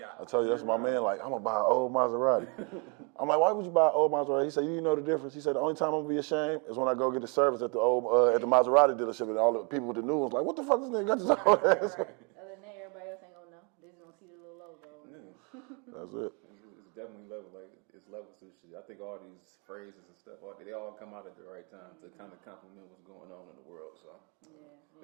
I tell you, that's my man. Like, I'm gonna buy an old Maserati. I'm like, why would you buy an old Maserati? He said, you know the difference. He said, the only time I'm gonna be ashamed is when I go get the service at the old at the Maserati dealership, and all the people with the new ones like, what the fuck this nigga got this old ass? Other than that, everybody else ain't gonna know. They just gonna see the little logo. Yeah. That's it. It's definitely level. Like it's levels to shit. I think all these phrases and stuff, they all come out at the right time to kind of complement what's going on in the world. So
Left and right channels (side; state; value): left; quieter; 34.6 dB